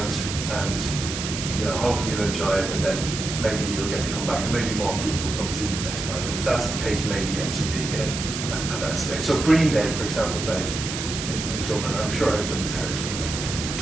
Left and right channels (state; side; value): noise; right; hiss, 5 dB below the sound